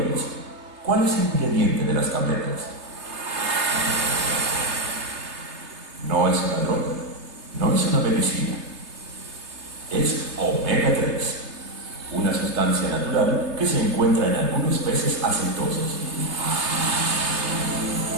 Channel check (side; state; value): left; late; 3.3 ms